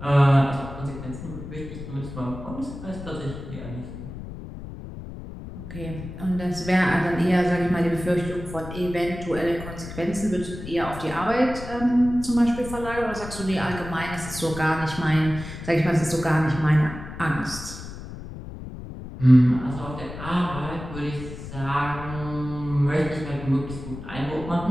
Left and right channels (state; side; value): noise; left; rumble, 11 dB below the sound